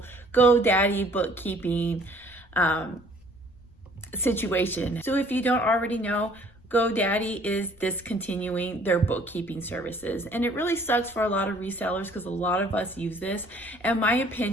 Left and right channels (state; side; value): noise; left; rumble, 27 dB below the sound